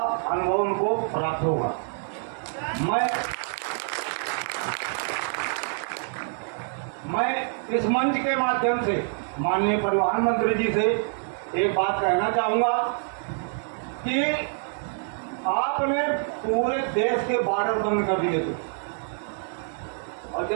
अनुभव उनको प्राप्त होगा। मैं इस मंच के माध्यम से माननीय परिवहन मंत्री जी से एक बात कहना चाहूंगा कि आपने पूरे देश के बॉर्डर बंद कर दिए थे, और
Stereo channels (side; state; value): left; silent; 57 dB below the other